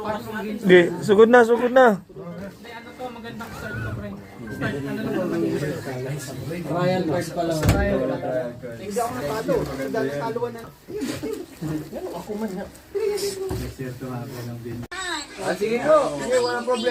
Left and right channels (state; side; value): identical; both; correlation 1.00